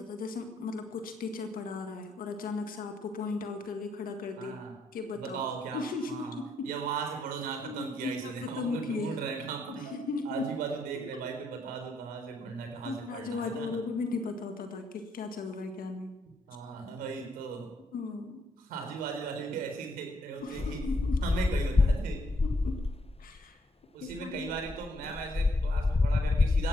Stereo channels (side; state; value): both; normal; correlation 0.73